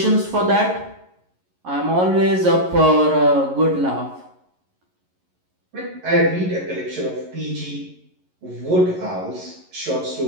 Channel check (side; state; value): left; late; 11 ms